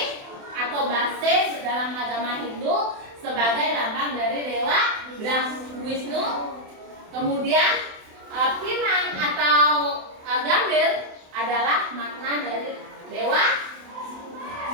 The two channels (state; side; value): late; left; 27 ms